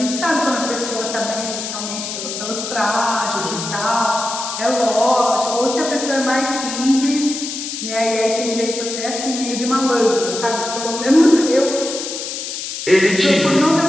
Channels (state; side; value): noise; left; hiss, 6 dB below the sound